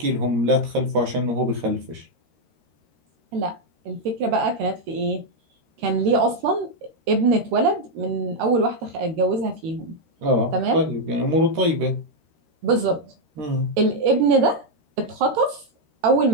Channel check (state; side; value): late; left; 13 ms